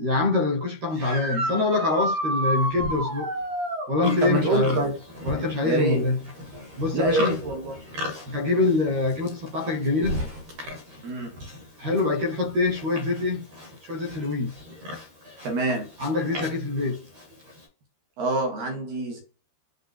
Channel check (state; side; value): late; left; 13 ms